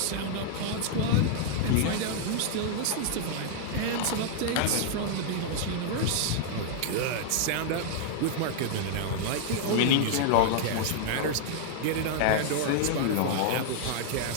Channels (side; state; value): both; different; correlation -0.01